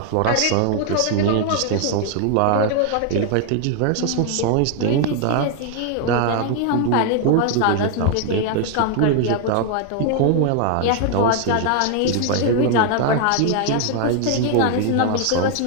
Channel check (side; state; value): both; different; correlation 0.00